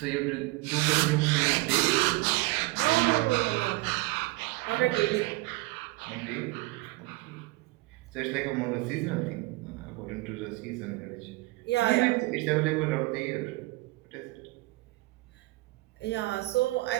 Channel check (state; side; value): quieter; left; 22.1 dB